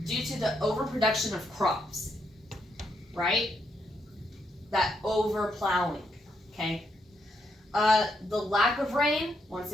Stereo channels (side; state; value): both; normal; correlation 0.78